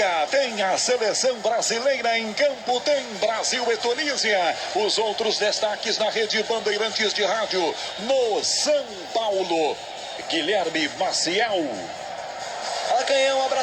Tem a seleção brasileira em campo, tem Brasil e Tunísia. Os outros destaques na rede Bandeirantes de Rádio no São Paulo. Guilherme Maciel. Fala, Canhão, um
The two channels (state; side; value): identical; both; correlation 1.00